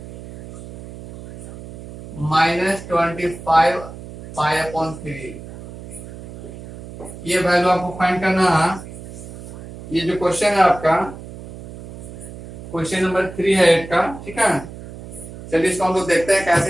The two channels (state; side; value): noise; right; hum, 14 dB below the sound